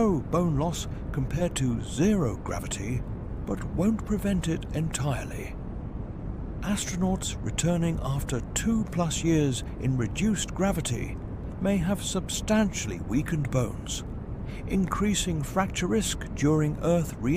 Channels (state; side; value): identical; both; correlation 1.00